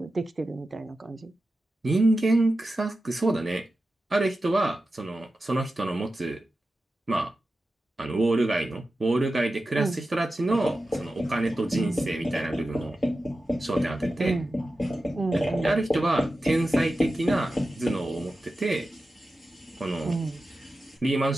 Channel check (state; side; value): normal; both; correlation 0.93